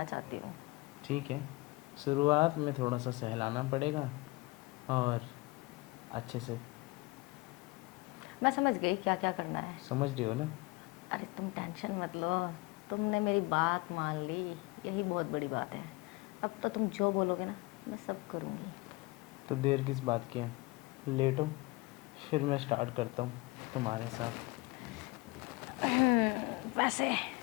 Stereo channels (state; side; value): quieter; right; 23.8 dB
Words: चाहती हूँ। ठीक है, शुरुआत में थोड़ा सा सहलाना पड़ेगा और अच्छे से। मैं समझ गई क्या क्या करना है। समझ रही हो ना? अरे तुम टेंशन मत लो, तुमने मेरी बात मान ली, यही बहुत बड़ी बात है। अब तो तुम जो बोलोगे ना मैं सब करूँगी। तो देर किस बात की है, लेटो, फिर मैं स्टार्ट करता हूँ तुम्हारे साथ। वैसे